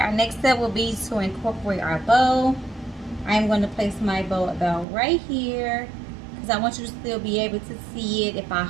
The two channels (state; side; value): drops out; left; at 4.9 s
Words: next step will be to incorporate our bow. I'm going to place my bow about right here, because I want you to still be able to see it if I